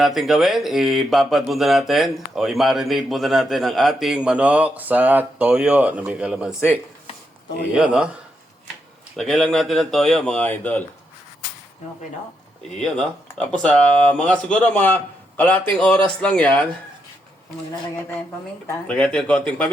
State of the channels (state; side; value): normal; both; correlation 0.81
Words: natin gawin, ibabad muna natin o i-marinate muna natin ang ating manok sa toyo na may kalamansi. Iyon, no? Lagay lang natin ng toyo, mga idol. Okay, no? Iyon, no? Tapos, siguro mga kalating oras lang yan. Maglalagay tayong paminta. Lagay natin konting